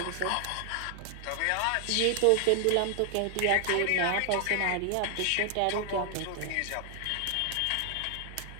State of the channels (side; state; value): both; different; correlation 0.00